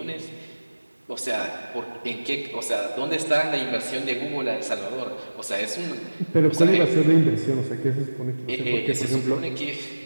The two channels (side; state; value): both; inverted; correlation -1.00